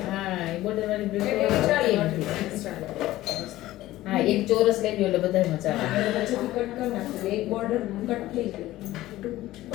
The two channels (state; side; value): quieter; right; 16.0 dB